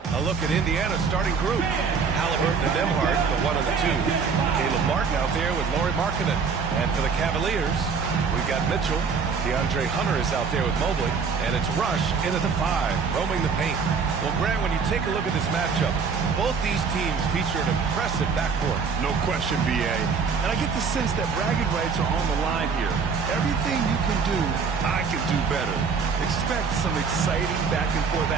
A look at Indiana's starting group. Halliburton and Nembhard, the 1 and the 2. Caleb Martin out there with Lauri Markkanen. And for the Cavaliers, we've got Mitchell. DeAndre Hunter is out there with Mobley. And it's Rush in at the 5, roaming the paint. Well, Grant, when you take a look at this matchup, both these teams feature an impressive backcourt. No question, B.A. And I get the sense that bragging rights are on the line here. Everything you can do, I can do better. Expect some exciting back-and-forth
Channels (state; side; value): quieter; left; 5.5 dB